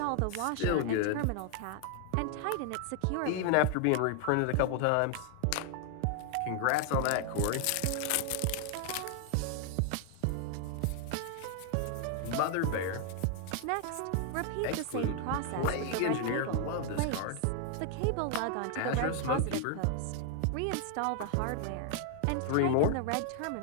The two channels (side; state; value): both; different; correlation 0.00